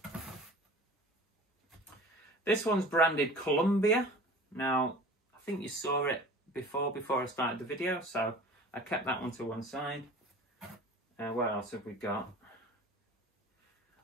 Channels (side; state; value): both; normal; correlation 0.42